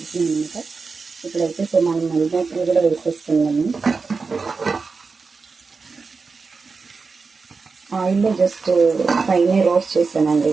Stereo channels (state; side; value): quieter; left; 4.6 dB